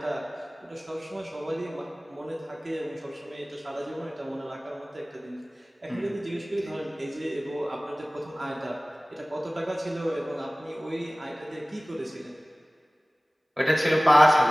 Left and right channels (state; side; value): normal; both; correlation 0.98